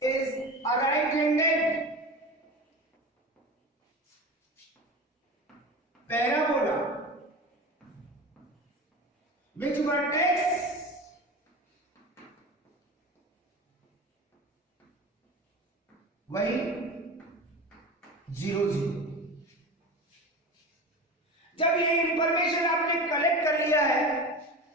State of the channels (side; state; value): both; normal; correlation 0.31